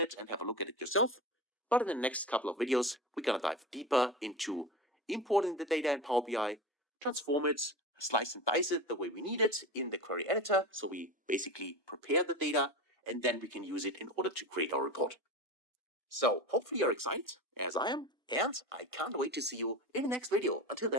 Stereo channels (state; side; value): normal; both; correlation 0.27